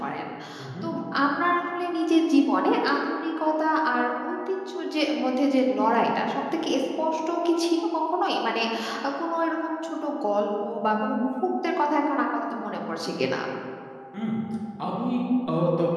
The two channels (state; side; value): identical; both; correlation 1.00